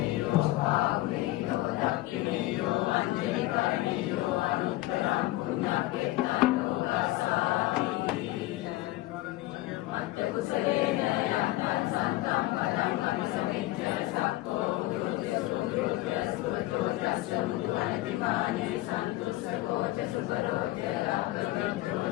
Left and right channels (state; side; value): quieter; right; 17.7 dB